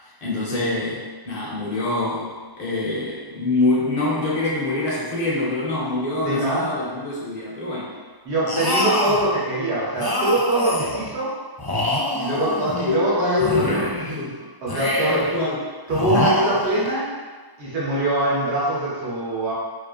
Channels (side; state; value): left; late; 1.0 ms